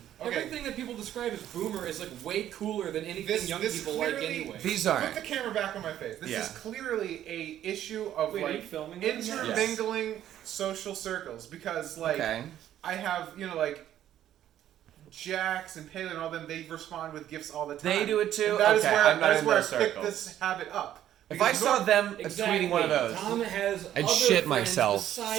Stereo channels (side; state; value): left; quieter; 11.6 dB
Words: Everything that people describe as boomer is like way cooler than anything young people like anyway. These are. Put the camera back on my face. This is clearly a issue of are you filming intermingling social circles, because I have Jax and Palin and all them. They respond with gifts all the time. They do it too. And that is where I circles. picked this habit up. If I saw them tweeting one of those, Tom has I'd shit myself.